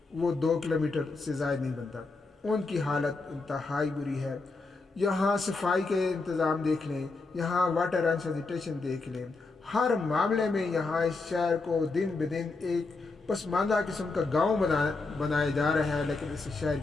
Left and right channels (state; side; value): quieter; right; 3.7 dB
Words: وہ 2 کلومیٹر سے زائد نہیں بنتا، ان کی حالت انتہائی بری ہے۔ یہاں صفائی کے انتظام دیکھ لیں، یہاں واٹر اینڈ سینیٹیشن دیکھ لیں، ہر معاملے میں یہاں اس شہر کو دن بدن ایک پسماندہ قسم کا گاؤں بنایا جا رہا ہے، لیکن اس شہر